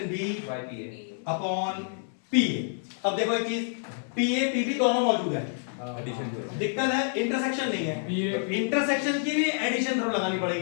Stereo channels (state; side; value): silent; right; 59 dB below the other